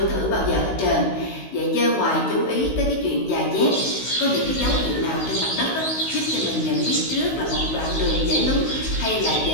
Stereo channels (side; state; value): right; late; 16 ms